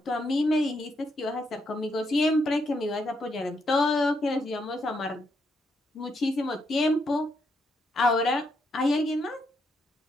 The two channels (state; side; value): normal; both; correlation 0.78